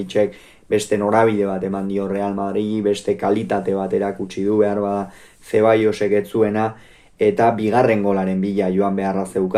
beste norabide bat eman dio Real Madridi, beste kalitate bat erakutsi du, behar bada Ceballosek ez zuena, eta bigarren golaren bila joan beharra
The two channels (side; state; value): both; identical; correlation 1.00